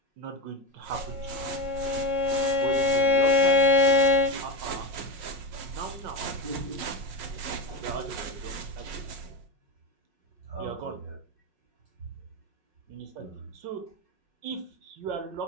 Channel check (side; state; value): left; late; 5.5 ms